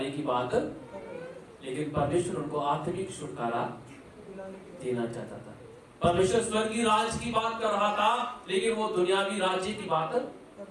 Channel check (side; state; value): both; identical; correlation 1.00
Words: की बात, लेकिन परमेश्वर उनको आत्मिक छुटकारा देना चाहता था। परमेश्वर स्वर्गीय राज की बात कर रहा था, लेकिन वो दुनियावी राज्य की बात